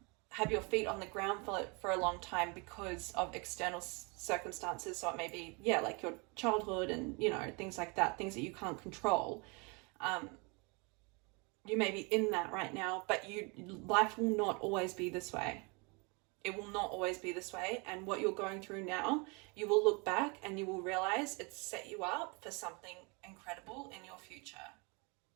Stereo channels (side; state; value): left; quieter; 30.6 dB